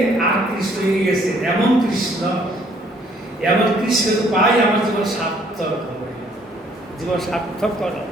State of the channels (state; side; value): normal; both; correlation 0.63